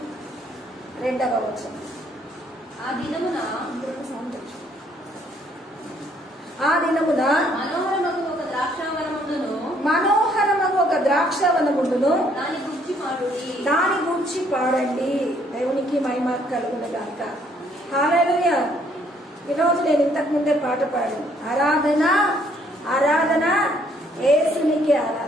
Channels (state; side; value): normal; both; correlation 0.66